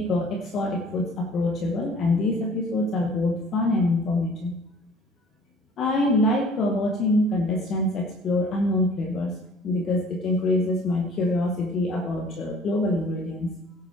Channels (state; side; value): normal; both; correlation 0.51